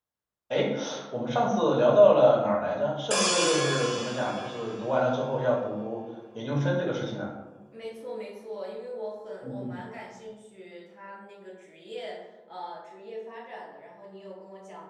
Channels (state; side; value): identical; both; correlation 1.00